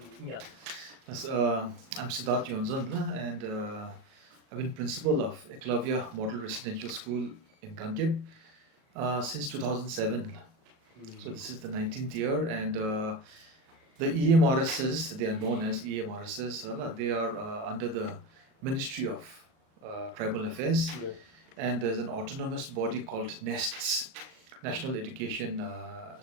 Yeah. Yes, I'm Sidharth Yonzone and I've been principal of Eklavya Model Residential School in Gangyap since 2007. So this is the 19th year, and the EMRSs, they are known as EMRSs, they are under the Ministry of Tribal Affairs, Yeah. and there's an autonomous body called NESTS, National Education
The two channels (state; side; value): late; left; 37 ms